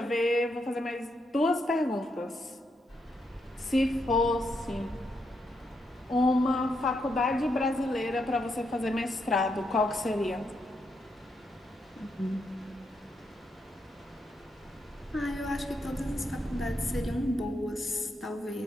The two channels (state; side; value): normal; both; correlation 0.80